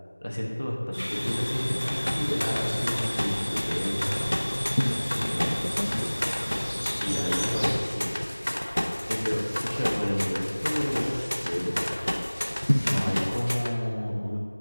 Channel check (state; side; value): inverted; both; correlation -1.00